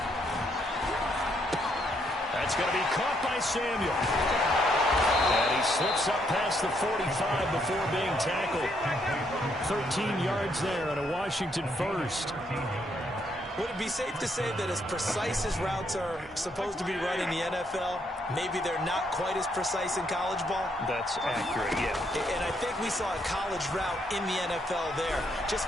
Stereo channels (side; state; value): both; normal; correlation 0.73